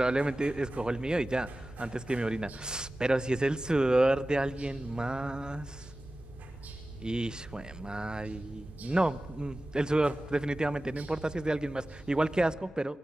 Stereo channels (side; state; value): both; normal; correlation 0.95